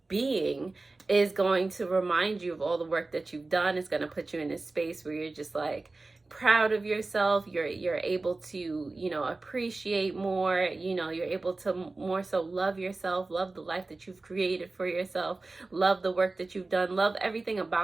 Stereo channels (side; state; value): left; quieter; 3.4 dB